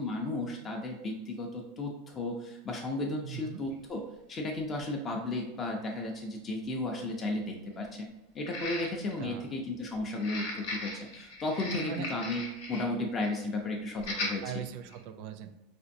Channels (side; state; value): both; normal; correlation 0.32